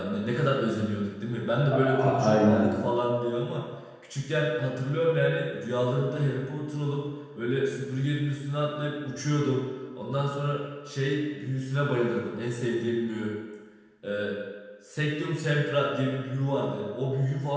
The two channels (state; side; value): identical; both; correlation 1.00